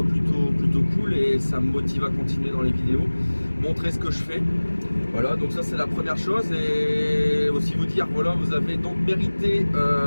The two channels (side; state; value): both; inverted; correlation -1.00